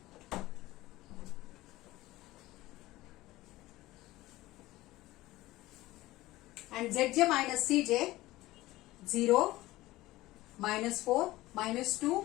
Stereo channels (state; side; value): quieter; right; 17.8 dB